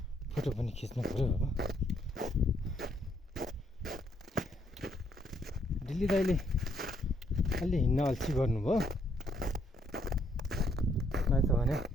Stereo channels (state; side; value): normal; both; correlation 0.71